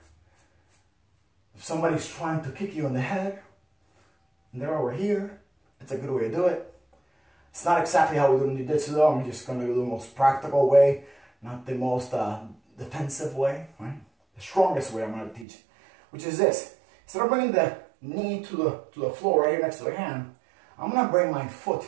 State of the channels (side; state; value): left; drops out; at 15.5 s